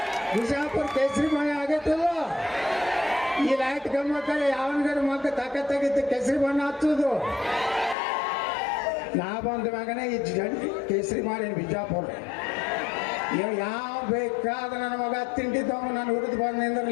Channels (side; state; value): right; drops out; at 8.0 s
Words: ಬಿಜಾಪುರ ಕೇಸರಿಮಯ ಆಗೈತಲ್ಲ. ಈ ಲೈಟ್ ಗಮ್ಮಕ್ಕಲ್ಲಿ ಯಾವನ್ಗಾರ ಮಗ ತಾಕತ್ತಾಗಿತ್ತು ಕೇಸರಿ ಬಣ್ಣ ಹಚ್ಚೋದು. ನಾ ಬಂದ ಮಗನೇ ಈ ಕೇಸರಿ ಮಾಡಿ ಬಿಜಾಪುರ ಯಾವ ಬೇಕಾದ ನನ್ನ ಮಗ ತಿಂಡಿದ್ದವ ನಾನು ಹುರಿದು ಬಂದು